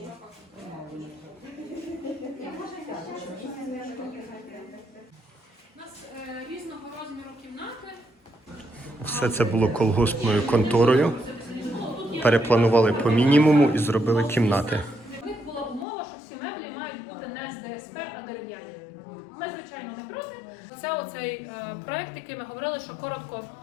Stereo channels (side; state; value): right; drops out; at 15.9 s